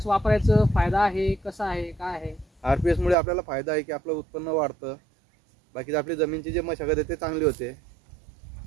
वापरायचं फायदा आहे, कसा आहे, काय आहे? RPS मुळे आपल्याला फायदा आहे की आपलं उत्पन्न वाढतं. बाकी आपली जमीनची जे मशागत आहे ते चांगली होते.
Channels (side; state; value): left; drops out; at 3.2 s